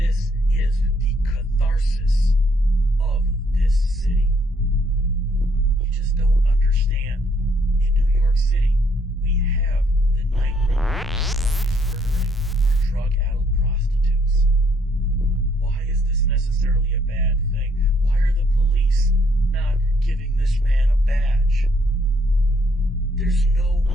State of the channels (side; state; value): both; normal; correlation 0.68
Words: is the catharsis of this city. You just don't understand. In New York City, we have the Nightripper murdering our drug-addled prostitutes. Why is this necessarily a bad thing? Why are the police not giving this man a badge? There's no